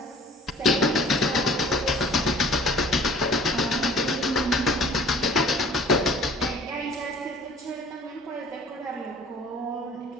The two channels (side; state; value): both; normal; correlation 0.49